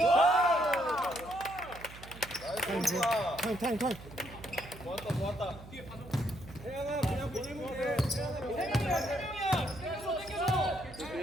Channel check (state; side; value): noise; right; hum, 16 dB below the sound